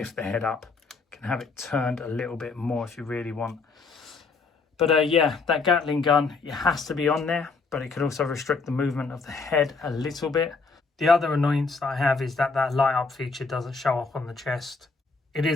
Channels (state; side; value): quieter; right; 4.3 dB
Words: the head up. You can have it turned a little bit more if you really want. But yeah, that Gatling gun, it has to be on there, but it could also restrict the movement of the head a little bit. The other annoyance that I have is that that light up feature doesn't show up on the chest. It